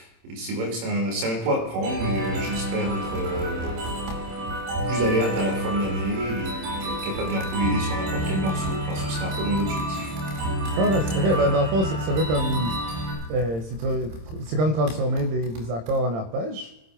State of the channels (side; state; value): left; late; 26 ms